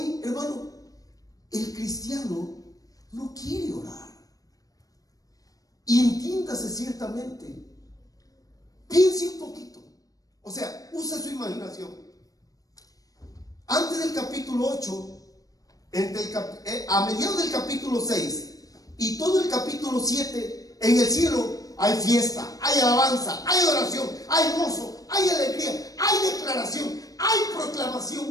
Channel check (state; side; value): late; right; 0.17 ms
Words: hermano, el cristiano no quiere orar. Y entiéndase ciertamente, Piense un poquito. O sea, use su imaginación. Antes del capítulo 8, a mediados del capítulo 6 y todo el capítulo 7, en el cielo hay fiesta, hay alabanza, hay adoración, hay gozo, hay alegría, hay declaración, hay